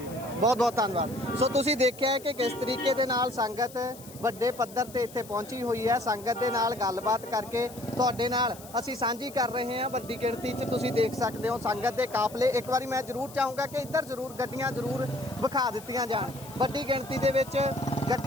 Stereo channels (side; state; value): left; noise; hiss, 18 dB below the sound